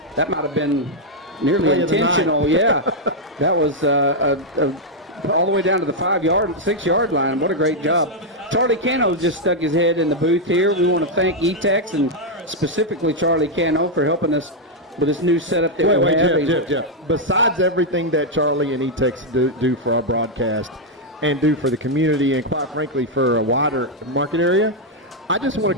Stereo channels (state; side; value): normal; both; correlation -0.01